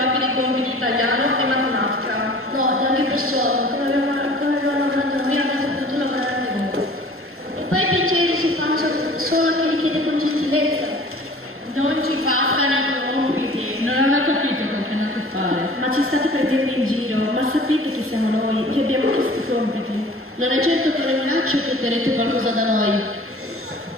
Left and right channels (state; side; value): normal; both; correlation 0.46